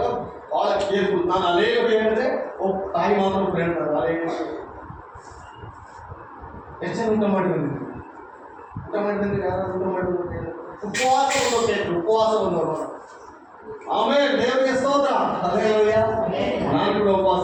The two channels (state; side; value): identical; both; correlation 1.00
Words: ಬಹಳ ಕೇರ್ಫುಲ್. ನಾನು ಅನೇಕ ಹೇಳಿದ್ರೆ ತಾಯಿ ಮಾತ್ರ ಹೇಳ್ತಾರೆ, ಅದೇ ಎಷ್ಟು ಜನ ಊಟ ಮಾಡಿ ಬಂದಿದ್ದೀವಿ? ಊಟ ಮಾಡಿ ಬಂದಿದ್ರೆ ಯಾರು ಊಟ ಮಾಡಿ ಉಪವಾಸ ಬಂದವರು. ಆಮೇಲೆ ದೇವರಿಗೆ ಸ್ತೋತ್ರ. ಹಲ್ಲೆಲೂಯಾ. ನಾನು ಕೂಡ ಉಪವಾಸ